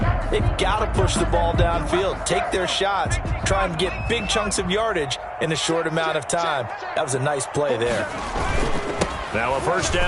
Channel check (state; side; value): identical; both; correlation 1.00